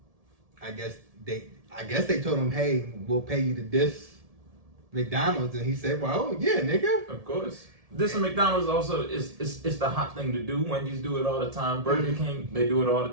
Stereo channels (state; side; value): late; left; 1.7 ms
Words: guess they told him, hey, we'll pay you to diss McDonald's, and he said, well, yeah, nigga. Of course. This and McDonald's also is the hot thing to do. Wendy's do it all the time. Burger King, they do it all the